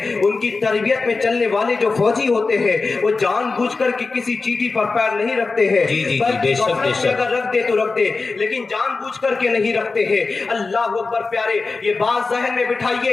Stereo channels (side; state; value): right; quieter; 4.0 dB